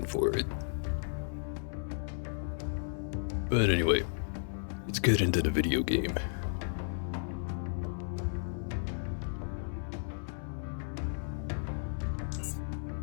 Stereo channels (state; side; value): silent; right; 55 dB below the other